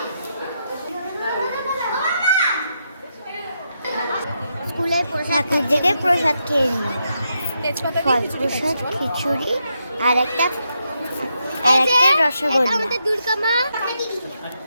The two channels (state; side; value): inverted; both; correlation -0.82